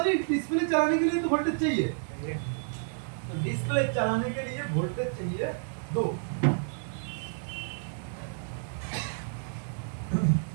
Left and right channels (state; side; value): silent; left; digital silence